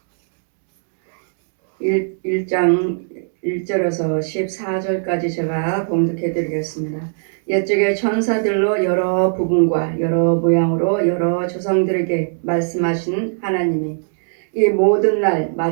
1장 1절에서 14절까지 제가 봉독해 드리겠습니다. 옛적에 천사들로 여러 부분과 여러 모양으로 여러 조상들에게 말씀하신 하나님이 이 모든 날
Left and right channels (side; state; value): left; silent; digital silence